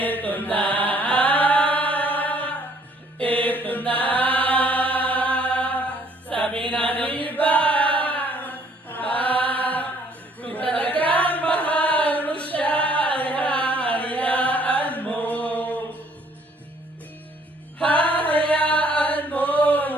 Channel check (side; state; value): both; normal; correlation 0.62